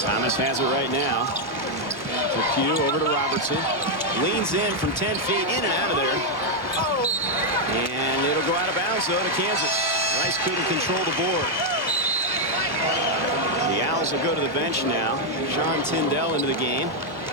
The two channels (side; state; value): both; normal; correlation 0.00